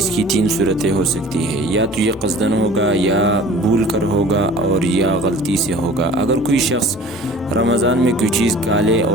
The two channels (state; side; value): normal; both; correlation 0.44